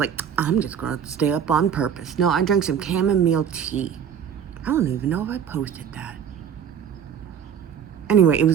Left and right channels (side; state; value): left; quieter; 8.1 dB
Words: I'm just going to stay up on purpose. No, I drank some chamomile tea. I don't even know if I posted that. Anyway, it